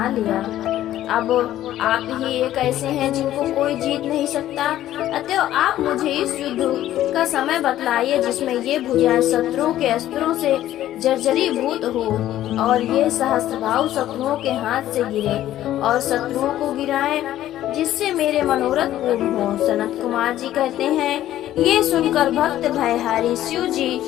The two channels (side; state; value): right; quieter; 13.1 dB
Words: लिया। अब आप ही एक ऐसे हैं जिनको कोई जीत नहीं सकता। अतः आप मुझे इस युद्ध का समय बतलाइए जिसमें ये भुजाएं शत्रुओं के अस्त्रों से जर्जरीभूत हो और ये सहस्त्रभाव शत्रुओं के हाथ से गिरे और शत्रुओं को गिराएं, जिससे मेरे मनोरथ पूर्ण हो। सनत कुमार जी कहते हैं, ये सुनकर भक्त भयहारी शिव जी